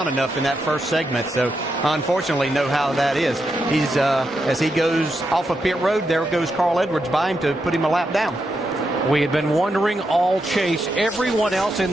enough in that first segment. So, unfortunately, know how that is. He's as he goes off of pit road, there goes Carl Edwards by him to put him a lap down. We had been wondering all chase. Everyone else in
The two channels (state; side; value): normal; both; correlation 0.84